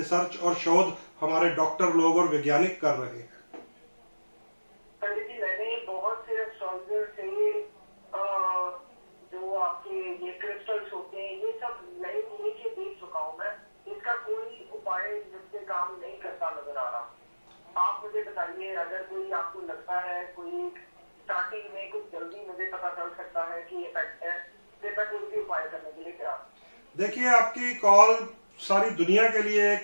और शोध हमारे डॉक्टर लोग और वैज्ञानिक कर रहे हैं। पंडित जी, मैंने बहुत से एस्ट्रोलॉजर से जो आपके ये क्रिस्टल्स होते हैं ये सब नए के देख चुका हूँ मैं। इसका कोई उपाय जिससे काम नहीं करता नजर आ रहा। आप मुझे बताइए, अगर कोई आपको लगता है कोई स्टार्टिंग में कुछ जल्दी मुझे पता चल सकता है कि इफेक्ट है, फिर मैं कोई भी उपाय करने के लिए तैयार। देखिए, आपकी कॉल सारी दुनिया के लिए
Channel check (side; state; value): both; inverted; correlation -1.00